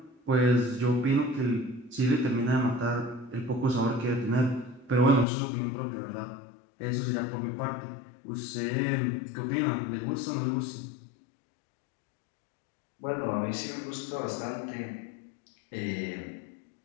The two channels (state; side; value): drops out; right; at 5.2 s